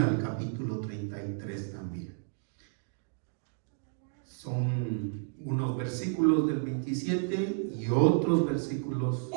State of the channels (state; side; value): silent; left; digital silence